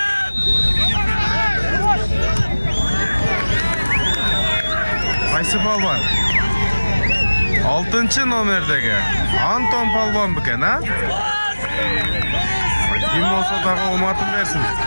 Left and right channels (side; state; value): both; inverted; correlation -1.00